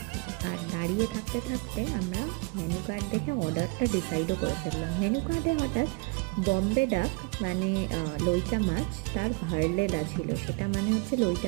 আর দাঁড়িয়ে থাকতে থাকতে আমরা মেনু কার্ড দেখে অর্ডারটা ডিসাইডও করে ফেললাম। মেনু কার্ডে হঠাৎ বম্বে ডাক মানে লইটা মাছ, তার ভারলেলা ছিল। সেটা মানে হচ্ছে লইটা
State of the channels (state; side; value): quieter; left; 30.1 dB